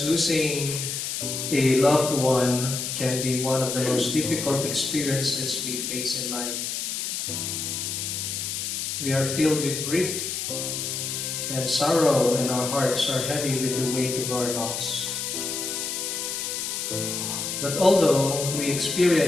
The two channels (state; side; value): noise; left; hiss, 3 dB below the sound